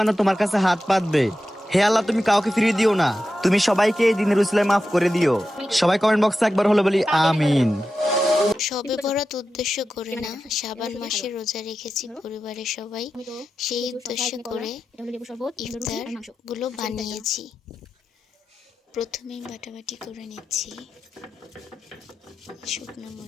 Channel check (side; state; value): both; normal; correlation 0.91